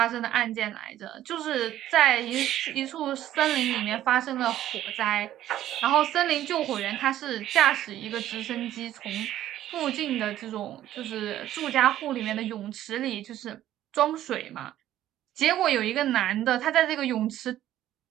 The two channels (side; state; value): left; quieter; 12.8 dB